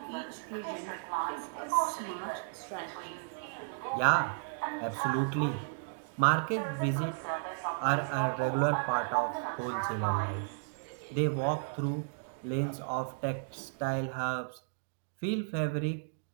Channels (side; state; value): left; silent; digital silence